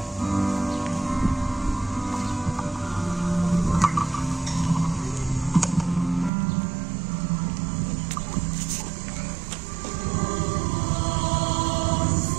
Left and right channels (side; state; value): left; drops out; at 6.3 s